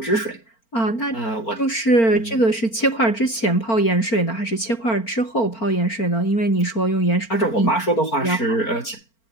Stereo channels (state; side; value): late; right; 4.4 ms